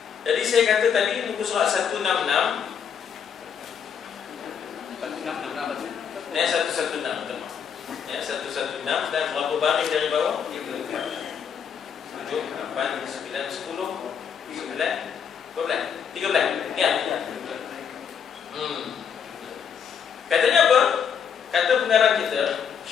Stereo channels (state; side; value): quieter; right; 7.4 dB